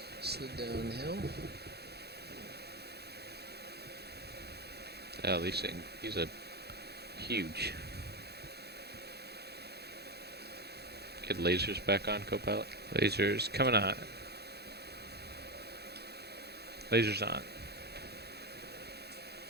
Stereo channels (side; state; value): left; late; 0.47 ms